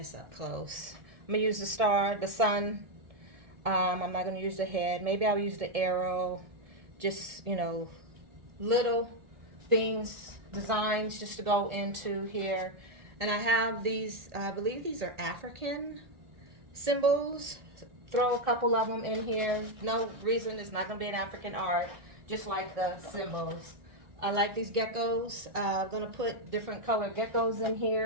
up close. I'm going to use the star, the sun. I'm not going to use the head. Maybe I'll use the arrow. Just, you know, little things, designs just to go into here. And I have these, I believe these are African symbols. Throw a couple of them in here. No reason it's not going to be an African art, just like the symbols. I like these geckos. I'm going to put different colored geckos in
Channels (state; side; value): late; left; 1.8 ms